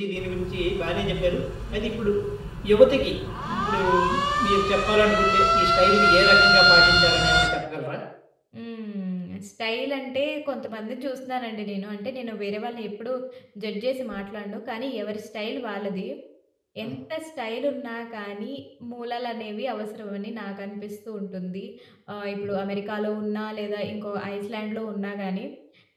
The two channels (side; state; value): both; identical; correlation 1.00